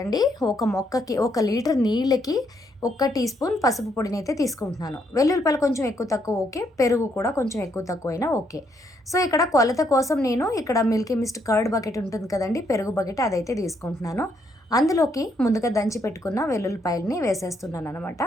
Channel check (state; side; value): normal; both; correlation 0.74